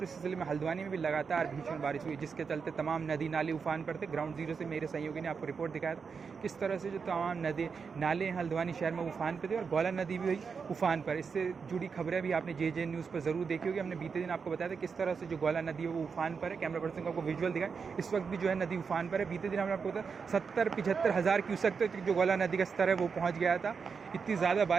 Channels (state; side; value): quieter; left; 5.7 dB